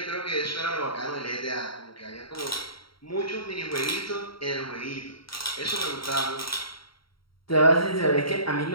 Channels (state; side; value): late; right; 0.74 ms